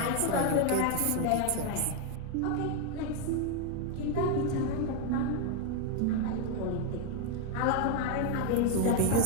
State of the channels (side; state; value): both; different; correlation 0.00